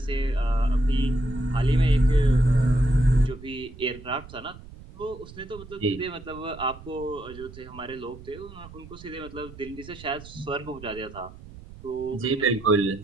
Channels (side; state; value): right; noise; rumble, 17 dB below the sound